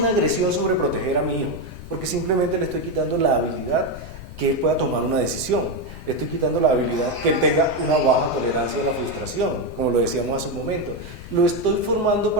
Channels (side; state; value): left; noise; rumble, 13 dB below the sound